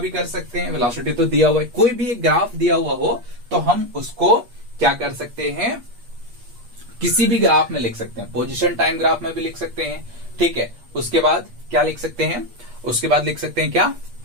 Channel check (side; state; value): left; late; 8.5 ms